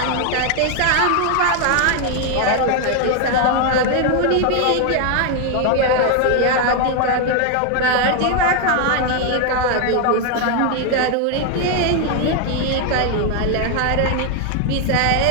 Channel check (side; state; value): both; different; correlation 0.01